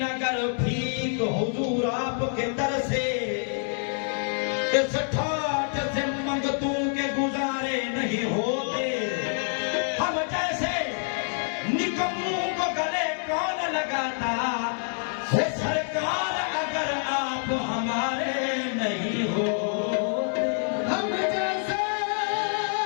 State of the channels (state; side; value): silent; right; 59 dB below the other